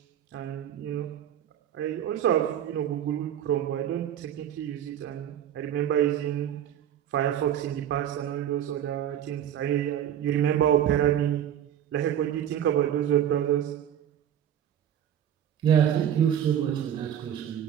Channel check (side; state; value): left; quieter; 10.3 dB